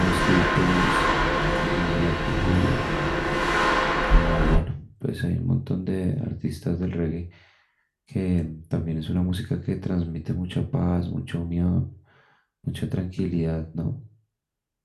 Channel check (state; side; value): identical; both; correlation 1.00